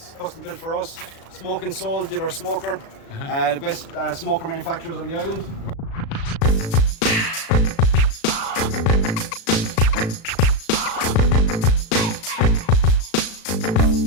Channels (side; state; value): right; late; 36 ms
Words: custom-built for us. Smoke and Soul did our smoker, the best smoker manufacturers on the island.